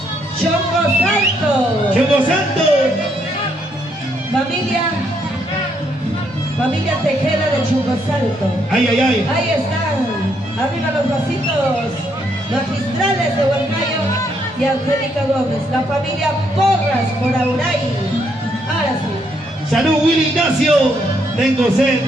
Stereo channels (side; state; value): both; normal; correlation 0.73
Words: Chongo Salto. Chongo Santo. Familia Tejeda de Chongo Salto. Ay, ay, ay. Ahí están. Arriba los vasitos magistrales de Huancayo y Angélica Gómez. La familia Porras por Auray. Ahora sí. Salud, Willy Ignacio. Tengo sed.